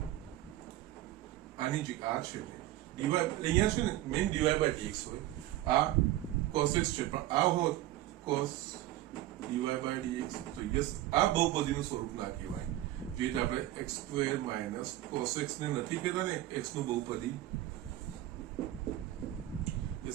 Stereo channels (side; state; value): left; quieter; 14.8 dB